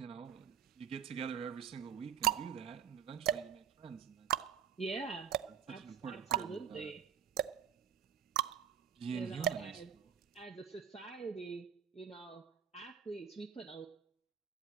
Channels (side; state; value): left; quieter; 8.6 dB